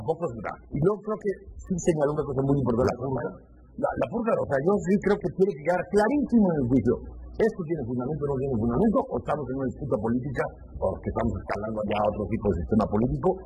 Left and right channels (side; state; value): both; identical; correlation 1.00